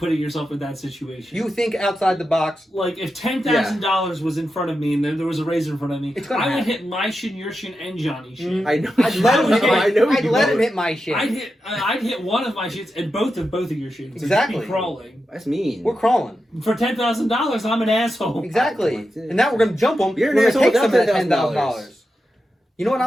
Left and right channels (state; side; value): normal; both; correlation 0.89